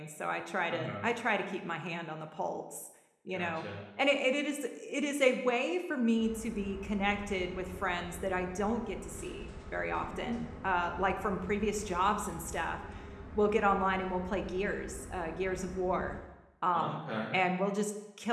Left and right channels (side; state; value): both; identical; correlation 1.00